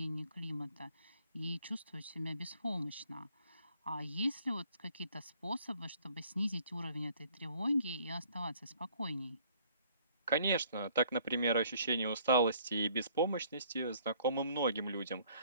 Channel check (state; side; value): inverted; both; correlation -0.59